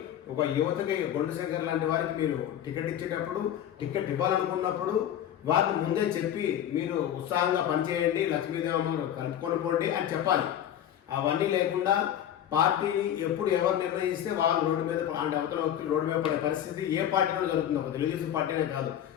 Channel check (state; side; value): quieter; right; 10.6 dB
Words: ఒక యువతకి గొండు శంకర్ లాంటి వారికి మీరు టికెట్ ఇచ్చేటప్పుడు టికెట్ ఇవ్వాలనుకున్నప్పుడు వారిని ముందే చెప్పి మీరు ఉత్సాహంగా పనిచేయండి, లక్ష్మీదేవమ్మ కలుపుకొని పోండి అని చెప్పాలి. అవన్నీ లేకుండా పార్టీ ఎప్పుడు ఎవరు నిర్ణయిస్తే వాళ్ళు రోడ్డు మీద అంటే అవతల వ్యక్తులు రోడ్డు మీద పడే పరిస్థితి ఏ పార్టీలో జరుగుతుంది, ఒక తెలుగుదేశం పార్టీనే కాదు.